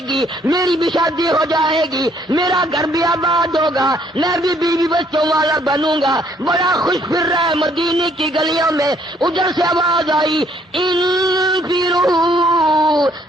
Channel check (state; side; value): normal; both; correlation 0.65